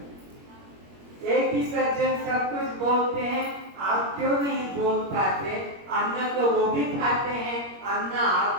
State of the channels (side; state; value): left; late; 21 ms